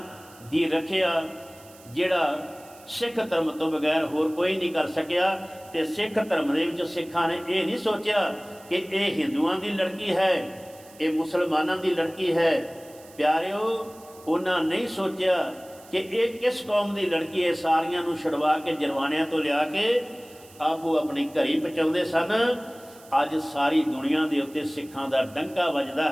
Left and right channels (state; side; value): noise; right; hiss, 23 dB below the sound